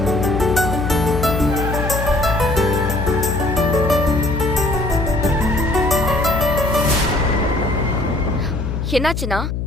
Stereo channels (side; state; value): left; noise; hum, 3 dB below the sound